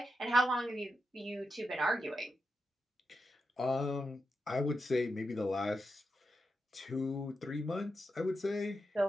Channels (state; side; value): normal; both; correlation 0.87